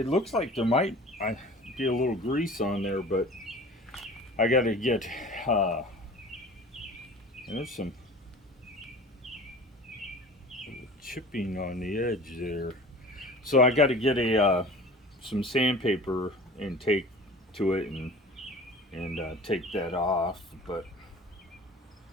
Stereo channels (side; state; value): both; normal; correlation 0.40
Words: looks like there might be a little grease on there, but I got to get there's some chipping on the edge there, so I got to get some sandpaper and take to it and take that off. But